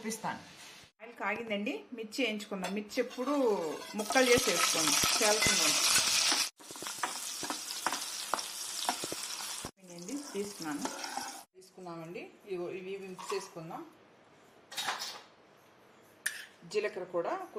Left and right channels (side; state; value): both; identical; correlation 1.00